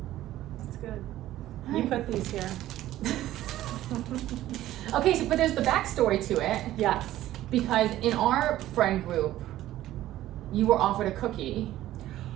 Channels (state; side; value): quieter; left; 14.2 dB